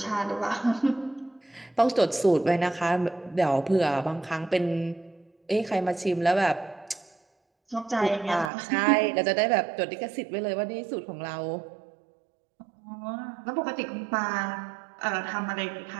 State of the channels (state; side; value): drops out; left; at 8.5 s